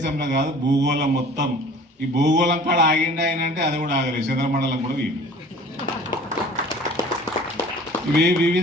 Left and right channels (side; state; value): both; normal; correlation 0.46